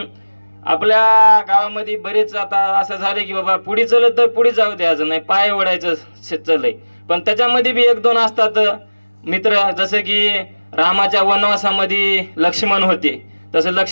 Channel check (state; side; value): inverted; both; correlation -1.00